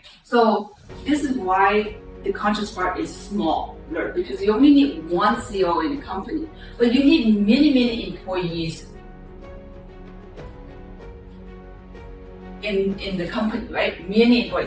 So this is why the conscious part is small, because you only need one CEO in the company, but you need many employees in the company, right? Many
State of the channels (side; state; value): both; identical; correlation 1.00